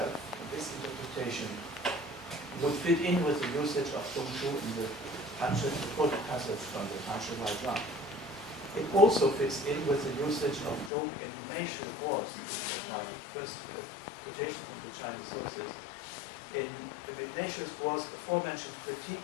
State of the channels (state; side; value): drops out; right; at 10.9 s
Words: and this interpretation would fit in with the usage of Zhongshu in the quote passage from the Franzl. It also fits in with the usage of Zhong in Meishu Wars, which was my first quotation from the Chinese sources. In Meishu's Wars, the aforementioned critique